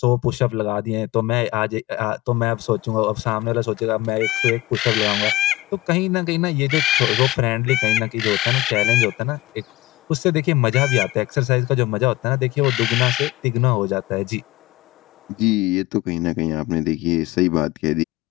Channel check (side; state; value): right; quieter; 18.0 dB